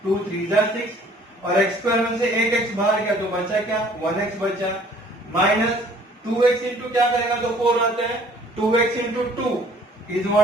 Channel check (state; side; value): normal; both; correlation 0.55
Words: 2 3 जा 6, और x स्क्वायर में से एक x बाहर गया, तो बचा क्या, 1x बचा. माइनस 2x इंटू क्या करेगा, तो 4 आता है, 2x into 2 is